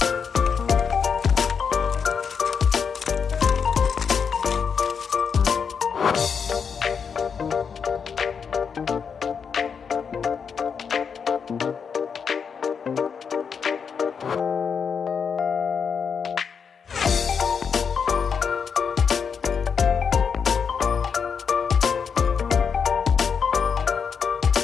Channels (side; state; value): right; quieter; 6.4 dB